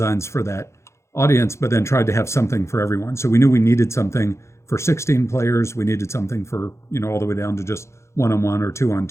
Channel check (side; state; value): right; late; 0.13 ms